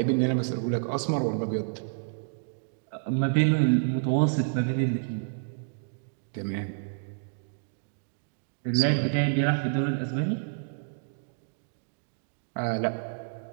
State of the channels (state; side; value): silent; left; digital silence